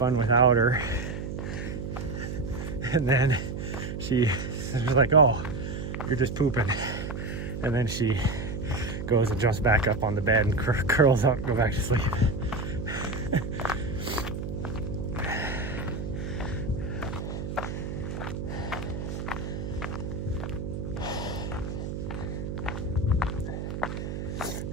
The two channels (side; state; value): right; noise; hum, 5 dB below the sound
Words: without her. And then she's like, oh, you're just pooping. And then she goes and jumps back up on the bed and curls up and go back to sleep.